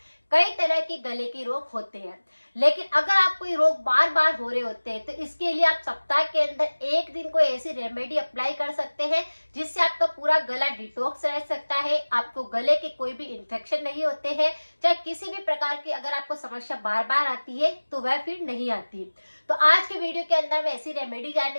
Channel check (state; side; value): inverted; both; correlation -1.00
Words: कई तरह के गले के रोग होते हैं, लेकिन अगर आपको ये रोग बार बार हो रहे होते हैं तो इसके लिए आप सप्ताह के अंदर एक दिन कोई ऐसी रेमेडी अप्लाई कर सकते हैं जिससे आपका पूरा गला डिटॉक्स रह सकता है, आपको गले के कोई भी इन्फेक्शन नहीं होते हैं, चाहे किसी भी प्रकार की अगर आपको समस्या बार बार आती है तो वह फिर नहीं आती। तो आज के वीडियो के अंदर मैं ऐसी रेमेडी